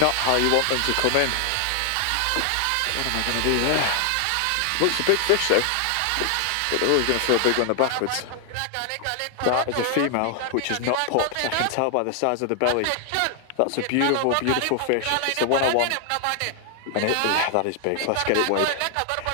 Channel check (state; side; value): different; both; correlation 0.00